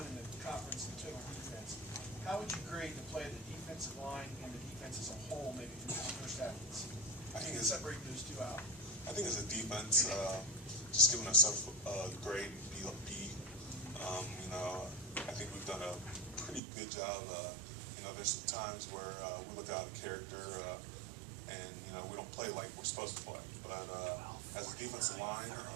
in the conference in total defense. How would you grade the play of the defensive line and the defense as a whole, maybe through this first half of the season? I think Separate those two out. I think as a defense, just giving ourselves a grade B. You know, I think we've done a pretty good job. You know, there's some times where we look out of character, and you know we don't play like we're supposed to play. But as a defensive line,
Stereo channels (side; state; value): left; drops out; at 16.6 s